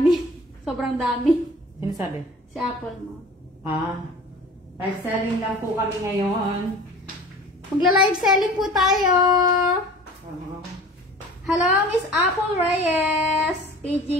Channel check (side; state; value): both; normal; correlation 0.42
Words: Sobrang dami. Sino sabi? Si Apple mo. Live selling lang po kami ngayon. Magla-live selling po tayo. Hello, Miss Apple Reyes.